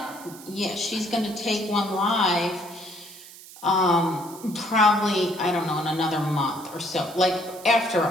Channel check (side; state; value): right; noise; hiss, 18 dB below the sound